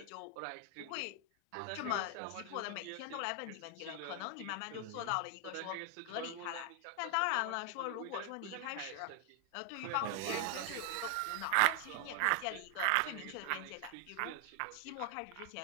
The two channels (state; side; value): different; both; correlation 0.00